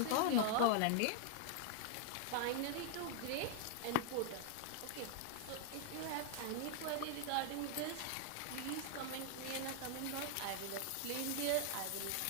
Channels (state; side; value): different; both; correlation 0.00